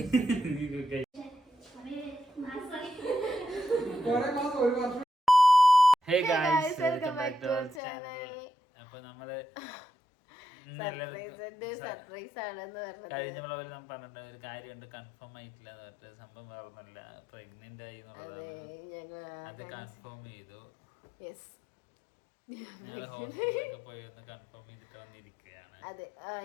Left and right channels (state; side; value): drops out; right; at 7.8 s